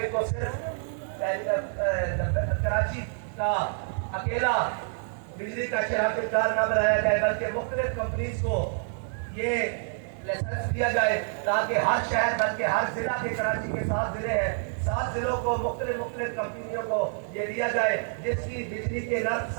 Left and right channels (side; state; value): left; silent; digital silence